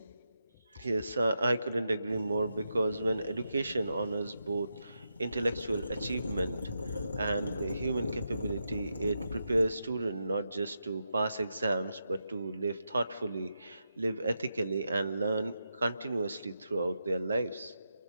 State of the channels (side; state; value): both; inverted; correlation -0.86